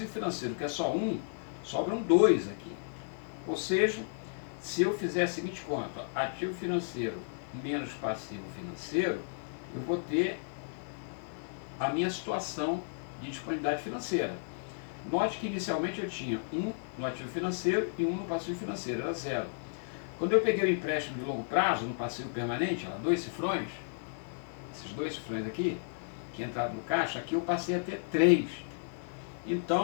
financeiro, que é só 1, sobram 2 aqui. Ou seja, se eu fizer a seguinte conta, ativo financeiro menos passivo financeiro, eu vou ter a minha situação de disponibilidade financeira. Note que inicialmente eu tinha 1 no ativo financeiro e 1 no passivo financeiro, era 0. Quando eu peguei o empréstimo de longo prazo no passivo permanente, 2 cifrões, esses 2 cifrões aqui, que entraram no caixa, aqui eu passei a ter 3.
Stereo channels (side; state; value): right; silent; digital silence